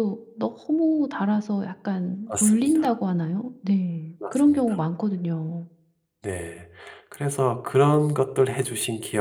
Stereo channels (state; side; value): identical; both; correlation 1.00